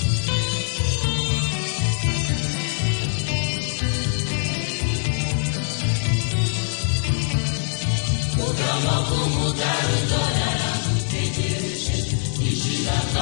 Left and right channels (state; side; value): silent; right; 63 dB below the other